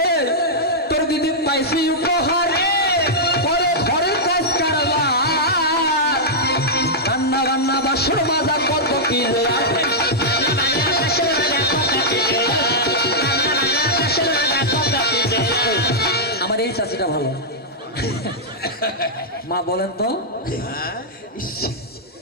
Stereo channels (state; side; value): normal; both; correlation -0.08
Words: এই, তোর দিদি পাইছি উপহার করে ঘরে কাজ কারবার রান্না বান্না বাসন মাজা কত কি রে আমার এই চাচিটা ভালো মা বলেন তো ইস,